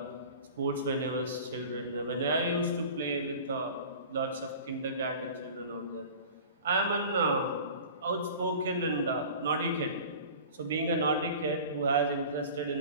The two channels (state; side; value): inverted; both; correlation -0.40